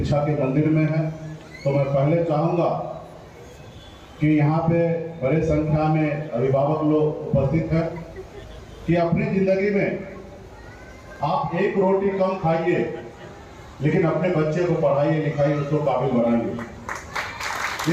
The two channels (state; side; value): identical; both; correlation 1.00